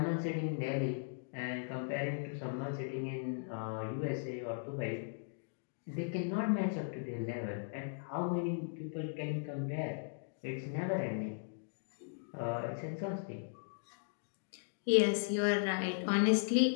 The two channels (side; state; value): right; silent; digital silence